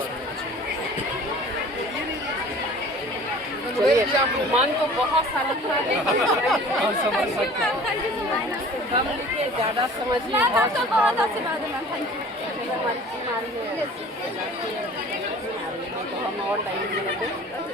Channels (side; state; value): both; normal; correlation 0.45